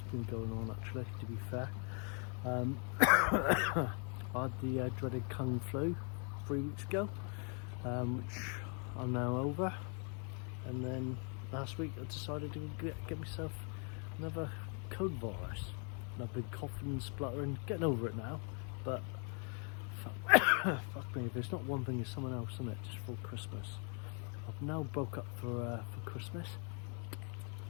been going on actually, to be fair. I had the dreaded Kung flu 3 weeks ago, which I'm now over, and then last week I decided to get myself another cold virus, and I've been coughing and spluttering, getting over it now, but fuck me, if it's not one thing it's someone else, isn't it? Just for Christmas. I've now broke up for Christmas,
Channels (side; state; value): right; quieter; 39.1 dB